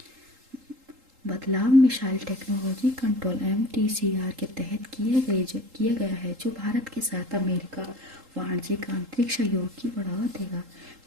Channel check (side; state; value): left; late; 3.8 ms